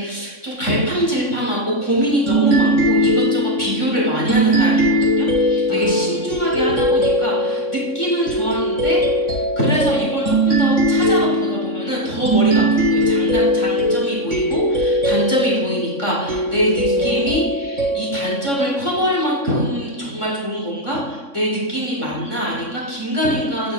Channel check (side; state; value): right; late; 3.6 ms